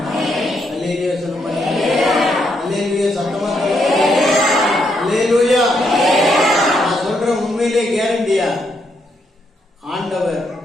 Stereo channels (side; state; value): both; normal; correlation 0.77